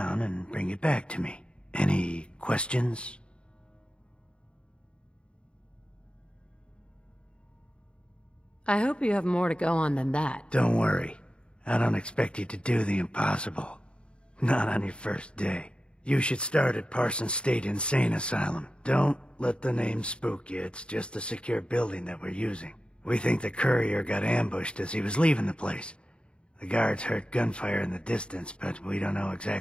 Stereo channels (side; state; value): right; late; 0.055 ms